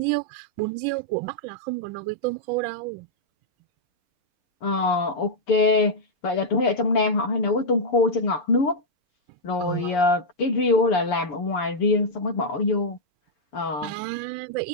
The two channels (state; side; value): late; right; 6.9 ms